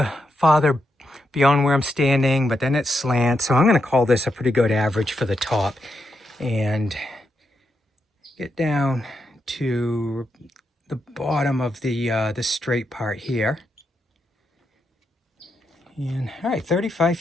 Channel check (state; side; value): normal; both; correlation 0.83